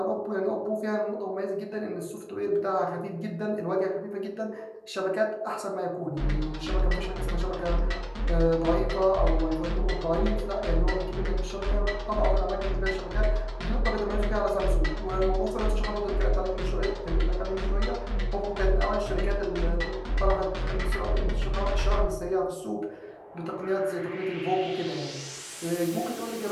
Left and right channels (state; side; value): identical; both; correlation 1.00